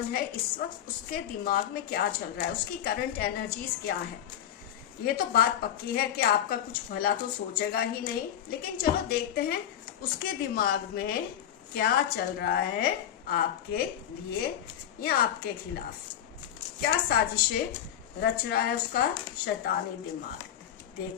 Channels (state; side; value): quieter; right; 10.2 dB